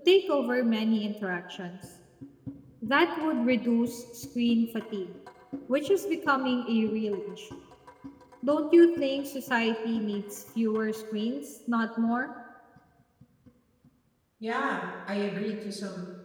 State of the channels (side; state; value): both; identical; correlation 1.00